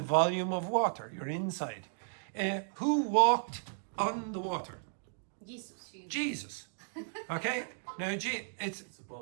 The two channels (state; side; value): silent; left; digital silence